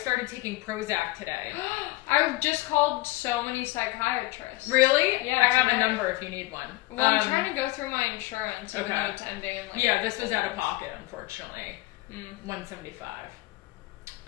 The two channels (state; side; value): quieter; right; 19.8 dB